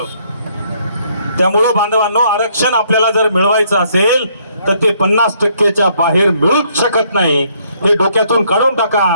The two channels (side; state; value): both; inverted; correlation -0.68